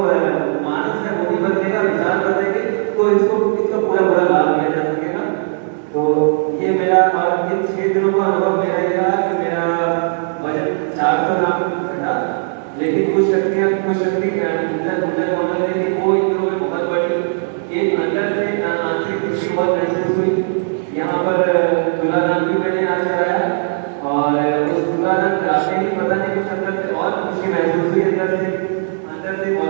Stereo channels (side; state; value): left; silent; 66 dB below the other